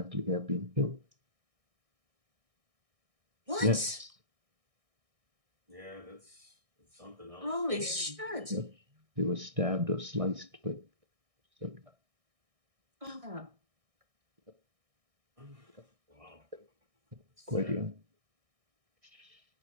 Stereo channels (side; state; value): left; late; 1.6 ms